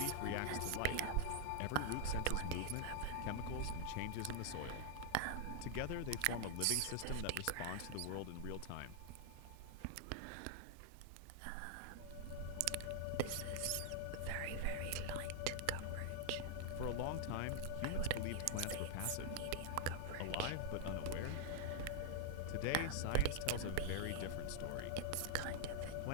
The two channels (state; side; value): different; both; correlation 0.00